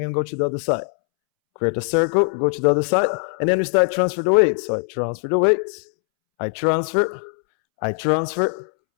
go to the other side. Create a circle, go to the other side, and then we start transfer the weight. So I transfer the weights, I transfer, I transfer,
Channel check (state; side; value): silent; right; 65 dB below the other